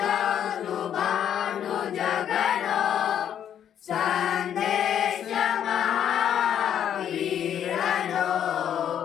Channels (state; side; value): quieter; right; 9.6 dB